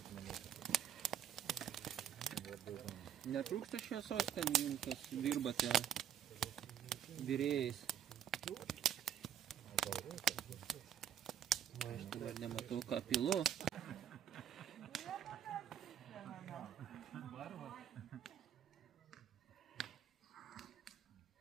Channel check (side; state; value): left; quieter; 9.5 dB